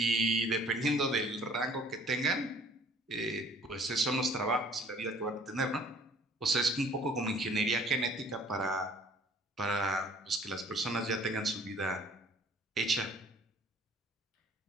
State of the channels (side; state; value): both; normal; correlation 0.55